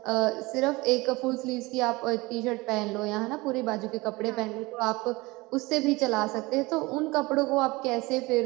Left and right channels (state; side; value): quieter; left; 22.6 dB